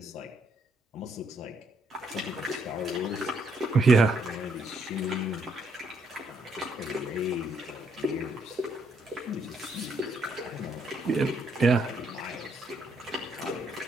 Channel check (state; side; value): normal; both; correlation 0.72